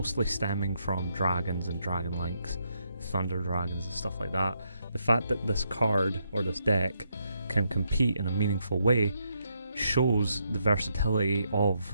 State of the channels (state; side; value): inverted; both; correlation -0.78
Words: stemming from dragons and dragon links, thunder dragons and stuff like that. The fact that this card, or this deck, can compete in a meaningful way shows the versatility